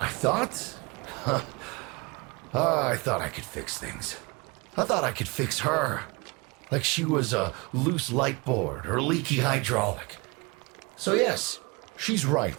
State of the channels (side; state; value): left; quieter; 27.5 dB